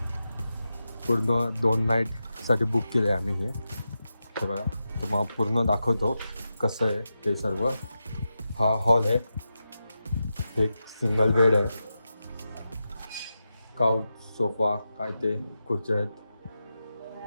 पूर्ण 2 नाईटसाठी बुक केलं आहे आम्ही. हे बघा, तुम्हाला पूर्ण दाखवतो कसं आहे ते सर्व. हा हॉल आहे. एक सिंगल बेड आहे. काउच, सोफा, काय ते खुर्च्या आहेत.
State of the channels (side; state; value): both; inverted; correlation -0.90